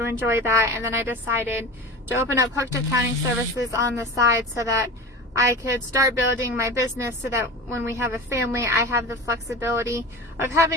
enjoy that, and then I decided to open up Hooked Accounting Services on the side so that I could start building my business, so that when we have a family, I have the flexibility of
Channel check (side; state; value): both; normal; correlation 0.32